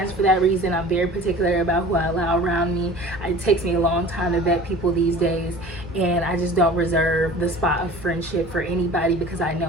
for that reason. I'm very particular about who I allow around me. It takes me a long time to vet people these days, and I just don't reserve the spot of friendship for anybody because I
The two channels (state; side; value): noise; right; hum, 21 dB below the sound